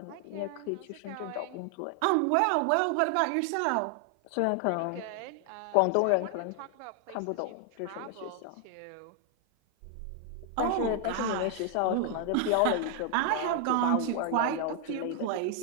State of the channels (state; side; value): different; both; correlation 0.00